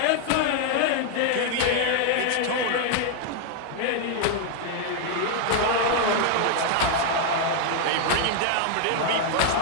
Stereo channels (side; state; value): both; different; correlation 0.00